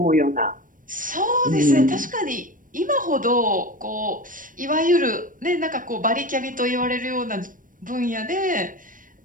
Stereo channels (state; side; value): late; left; 0.39 ms